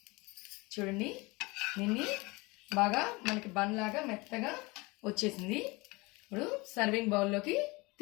చూడండి, దీన్ని బాగా మనకి బన్ లాగా మెత్తగా వచ్చేసింది. ఇప్పుడు సర్వింగ్ బౌల్లోకి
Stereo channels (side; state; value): right; quieter; 24.6 dB